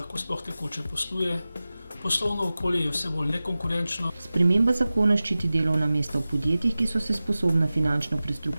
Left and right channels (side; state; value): both; inverted; correlation -0.96